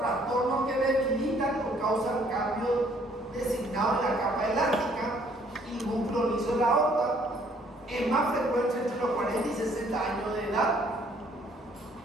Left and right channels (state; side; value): normal; both; correlation 0.62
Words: que debilitan o causan cambios designados en la capa elástica y el músculo liso de la aorta. Es más frecuente entre los 40 y 60 años de edad.